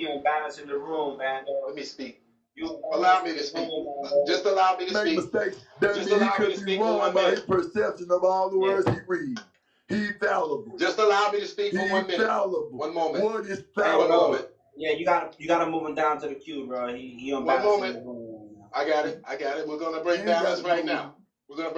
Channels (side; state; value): both; identical; correlation 1.00